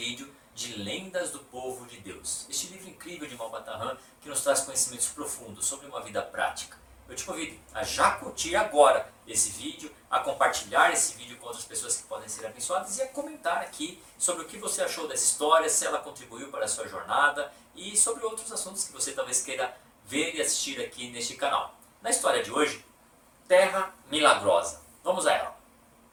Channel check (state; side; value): identical; both; correlation 1.00